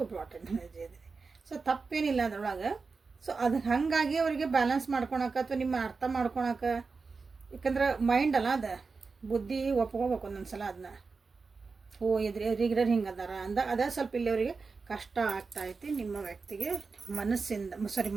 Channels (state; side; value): quieter; left; 4.5 dB